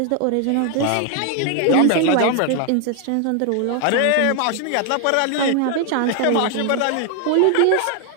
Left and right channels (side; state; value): both; different; correlation 0.00